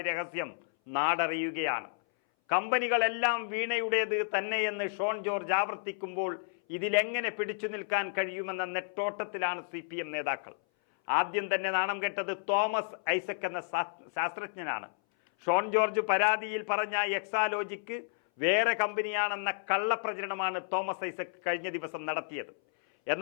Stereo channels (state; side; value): silent; right; 57 dB below the other